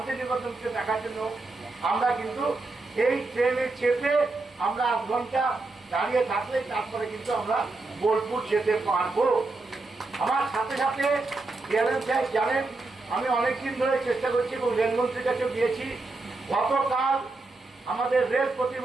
দেখার জন্য আমরা কিন্তু এই ট্রেনে চেপে আমরা 8 ঘন্টা দাঁড়িয়ে থাকলে তারপরে কিন্তু আমরা বোলপুর যেতে পারবো। আমার সাথে সাথে ডিআরএম সাহেব জানেন আমি অনেকদিন ধরে চেষ্টা করছি এবং রেলমন্ত্রীর কাছেও গিয়েছি। গতকাল আমাদের রেল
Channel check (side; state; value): left; quieter; 3.4 dB